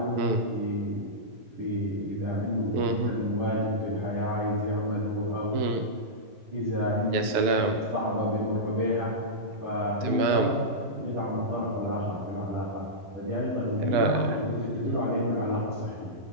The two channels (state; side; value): late; left; 12 ms